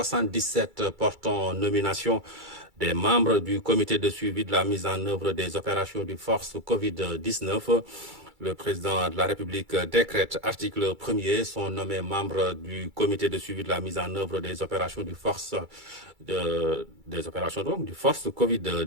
portant nomination des membres du comité de suivi de la mise en œuvre des opérations du force Covid-19. Le président de la République décrète, article 1er, sont nommés membres du comité de suivi de la mise en œuvre des opérations du force du force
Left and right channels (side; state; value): left; late; 2.3 ms